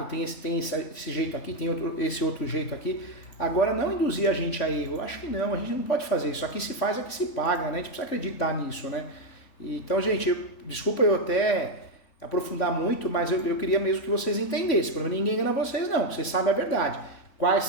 tem esse jeito aqui, tem esse outro jeito aqui. Agora, não induzir a gente a erro. Acho que não, a gente não pode fazer isso. Aqui se faz, aqui se paga, né? A gente precisa acreditar nisso, né? Então, gente, desculpa eu até aprofundar muito, mas eu queria mesmo que vocês entendessem. Para ninguém engana vocês, não. Vocês sabem a verdade. Quais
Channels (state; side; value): late; right; 3.5 ms